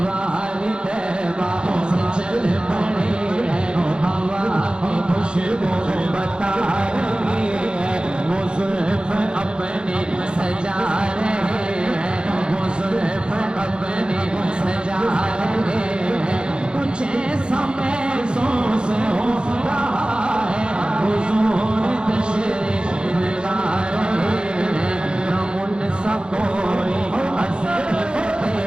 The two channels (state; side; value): late; left; 0.051 ms